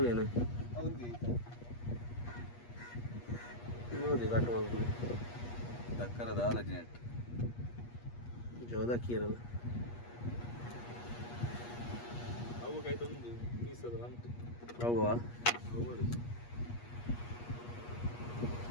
ನೋಡಿ ಕಟ್ ಮಾಡ್ಬೋದು ದಕ್ಕರದ ಆಲಜಿನೆಟ್ ಜೋದಕ್ಕಿ ಇರಲ್ಲ ಹೌವಾ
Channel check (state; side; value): late; right; 8.4 ms